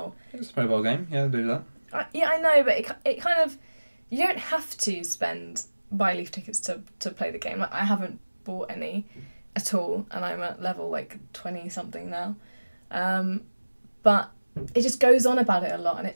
It's a mobile game, yeah, do that. Yeah, I know, but it kind of, you don't have to buy leaf tickets to play the game. Like, I haven't bought any at all, and I'm at level like 20 something now. But it just goes on about it a lot, and it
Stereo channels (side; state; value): both; inverted; correlation -1.00